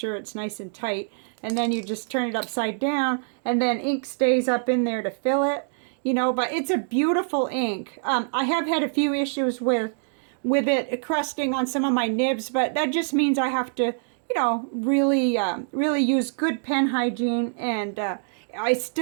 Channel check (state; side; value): silent; left; digital silence